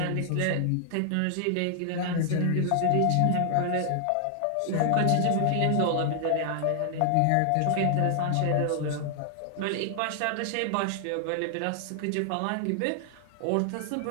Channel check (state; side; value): different; both; correlation 0.00